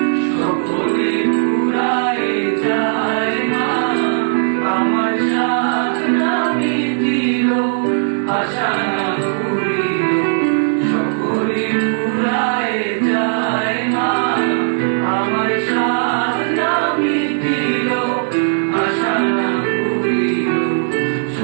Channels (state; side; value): silent; left; digital silence